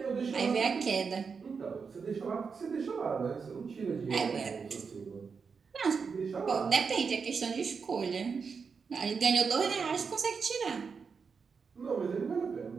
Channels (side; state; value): left; quieter; 5.5 dB